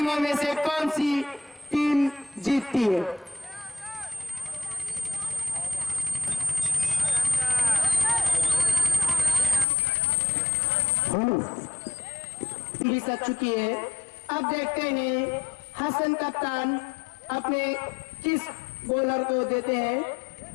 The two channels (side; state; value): right; drops out; at 9.7 s